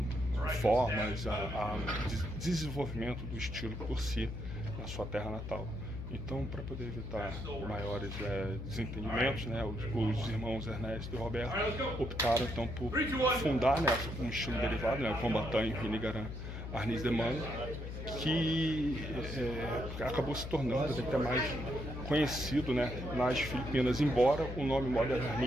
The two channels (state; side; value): noise; left; hum, 7 dB below the sound